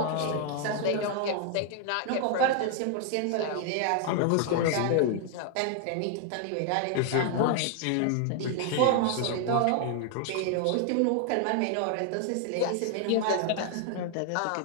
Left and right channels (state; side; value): different; both; correlation 0.00